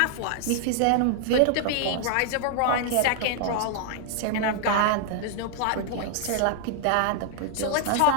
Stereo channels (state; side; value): different; both; correlation 0.00